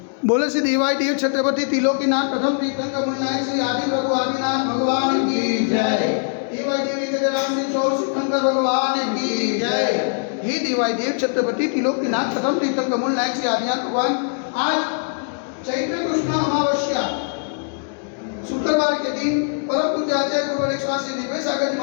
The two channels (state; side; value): silent; right; 65 dB below the other